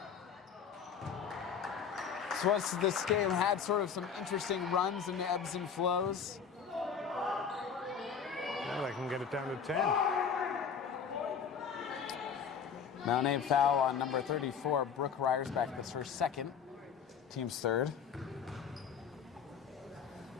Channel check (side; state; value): right; quieter; 6.9 dB